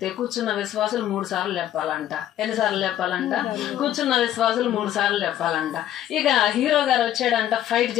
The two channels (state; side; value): quieter; right; 11.8 dB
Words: కూర్చున్న విశ్వాసులు 3 సార్లు చెప్పాలంట. ఎన్నిసార్లు చెప్పాలంట? కూర్చున్న విశ్వాసులు 3 సార్లు చెప్పాలంట. ఇక హీరో గారు వచ్చాడంట, ఫైట్